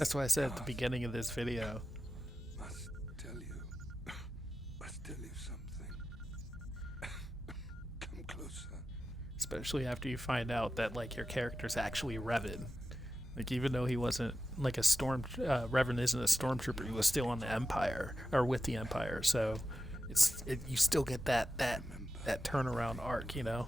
what I said at the beginning of this video. Must tell you something. Come closer. Especially after you find out that like your character's actually Revan. Like even though he wasn't like a Revan isn't a stormtrooper, he was still on the Empire or with the Empire. So you still get that turnaround arc, you know,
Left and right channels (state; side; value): normal; both; correlation 0.92